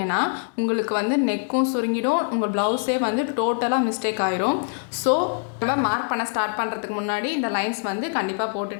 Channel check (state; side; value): silent; right; digital silence